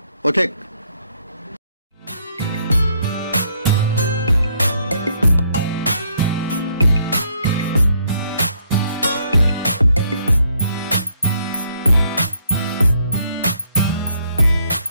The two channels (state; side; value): inverted; both; correlation -0.70